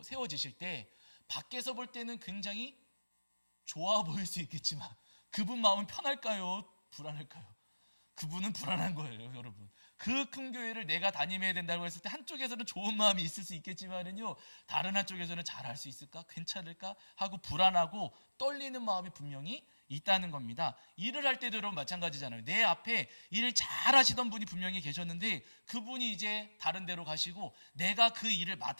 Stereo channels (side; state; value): both; inverted; correlation -1.00